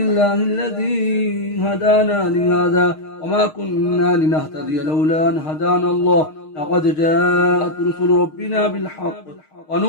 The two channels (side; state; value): right; late; 6.5 ms